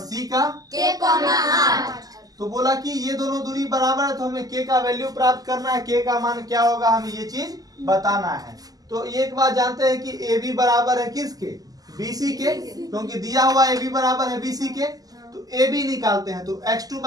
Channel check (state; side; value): late; left; 0.18 ms